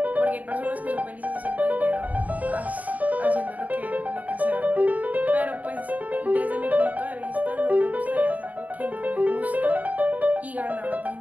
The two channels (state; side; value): late; left; 0.073 ms